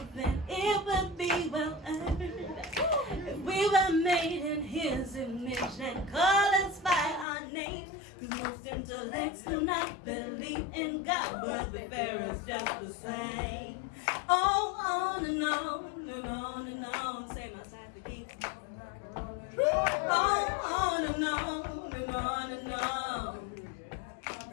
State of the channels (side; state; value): right; drops out; at 7.2 s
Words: then it would be well earned. If we were made in His image and call us by our name, 'cause most intellects do not believe in God, but the Pharaoh's just the same. Oh, on and on and on and on. Say my side to keep. On and on and on and on.